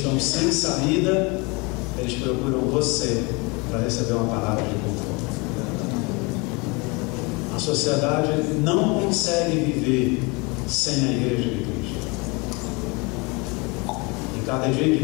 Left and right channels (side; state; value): right; quieter; 28.1 dB